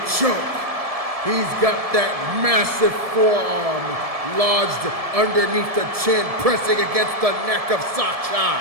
choke. He's got that massive forearm lodged underneath the chin, pressing against the neck of Sakchai.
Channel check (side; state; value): left; late; 1.7 ms